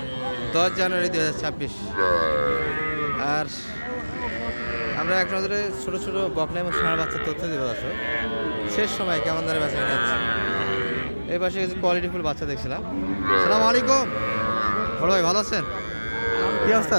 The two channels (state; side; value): inverted; both; correlation -1.00